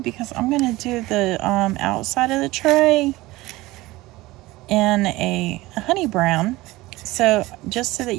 because I'm going to do the outside of the tray in a honey brown, so just so that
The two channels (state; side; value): quieter; left; 19.3 dB